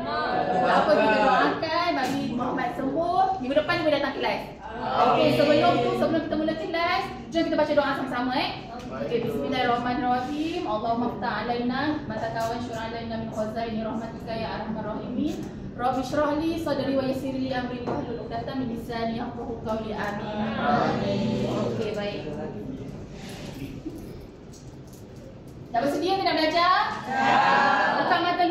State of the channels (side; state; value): both; identical; correlation 1.00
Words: Tak apa, kita doakan bagi Muhammad sembuh. Minggu depan dia boleh datang kelas. Okey, sebelum kita mula kelas, jom kita baca doa sama-sama Okey, bismillahirrahmanirrahim. Allahumma ftah alaina mata kawan syur'a alaina min khazaini rahmatika ya arhamar rahimin. Rabbi shrah li sadri wa yassir li amri wahlul 'uqdatam min lisani yafqahu qawli. Amin. Okey, baik. Dah bersedia ke nak belajar? Buka mata